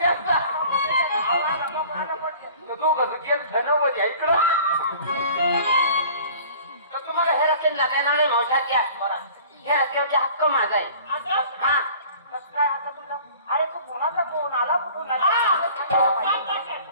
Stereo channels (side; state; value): both; inverted; correlation -0.47